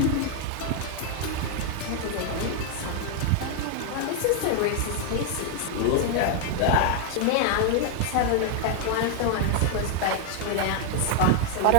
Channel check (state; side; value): different; both; correlation 0.00